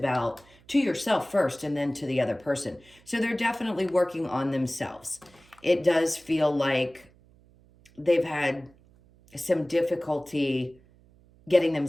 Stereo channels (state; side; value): noise; right; hum, 28 dB below the sound